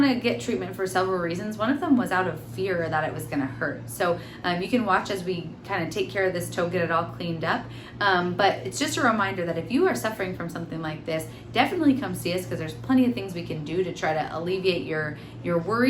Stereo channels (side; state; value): both; identical; correlation 1.00